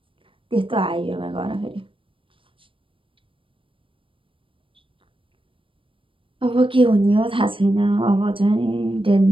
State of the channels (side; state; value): left; late; 0.25 ms